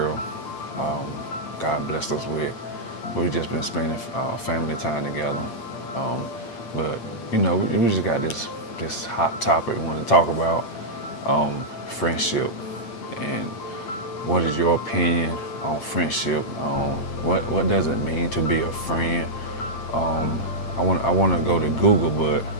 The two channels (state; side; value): late; right; 8.6 ms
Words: God blessed us with. We've just been spending family time together. But you know, we just got this hot topic we want to talk about, friendship, and what is your opinion on friendship? What does it mean to be a friend? I want to go to Google, but